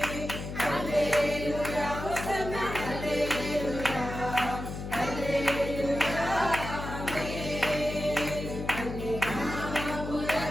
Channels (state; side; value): noise; left; hum, 7 dB below the sound